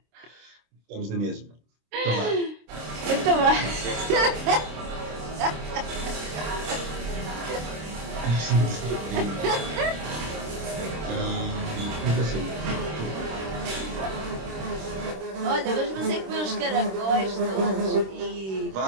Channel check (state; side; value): late; left; 26 ms